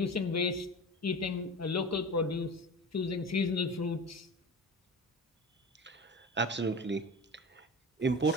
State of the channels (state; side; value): normal; both; correlation 0.31